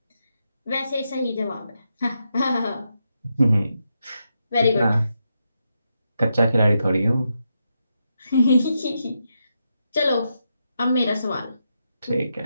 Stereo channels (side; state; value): both; inverted; correlation -0.84